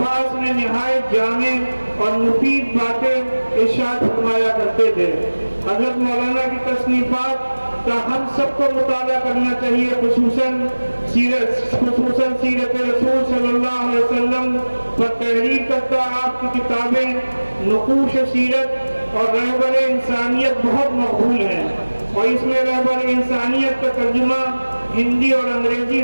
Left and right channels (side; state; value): both; inverted; correlation -1.00